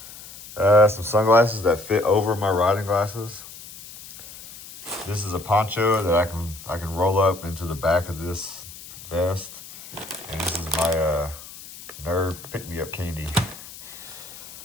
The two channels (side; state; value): left; noise; hiss, 16 dB below the sound